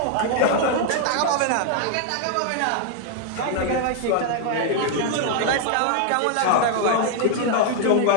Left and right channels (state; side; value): different; both; correlation 0.00